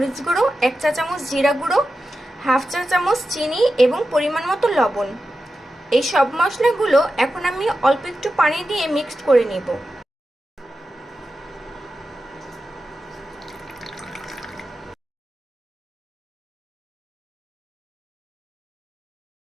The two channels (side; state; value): both; normal; correlation 0.91